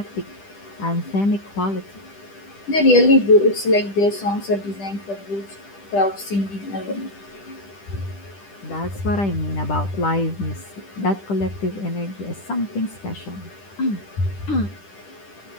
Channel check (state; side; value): late; right; 10 ms